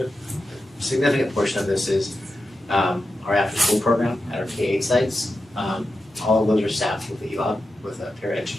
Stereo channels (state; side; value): normal; both; correlation 0.90